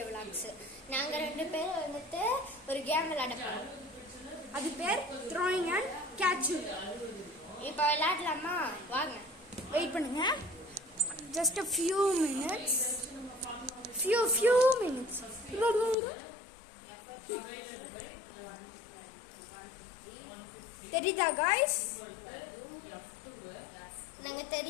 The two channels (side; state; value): right; drops out; at 16.0 s